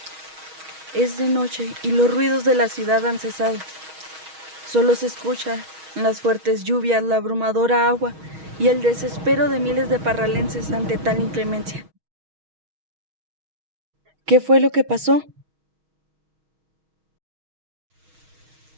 Es de noche y los ruidos de la ciudad han cesado. Solo se escuchan las fuertes lluvias, la abrumadora agua y el desespero de miles de parralenses ante tal inclemencia. ¿Qué fue lo que pasó?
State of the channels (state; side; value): late; left; 6.3 ms